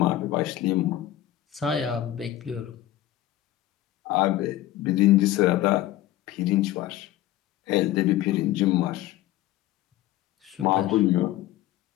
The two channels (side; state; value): right; quieter; 14.3 dB